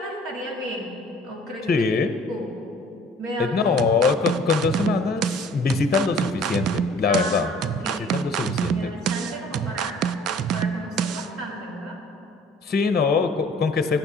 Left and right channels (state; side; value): normal; both; correlation 0.53